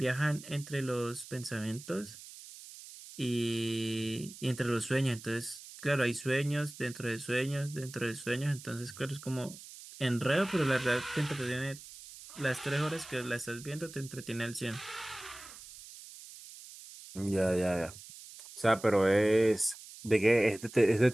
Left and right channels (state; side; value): noise; right; hiss, 16 dB below the sound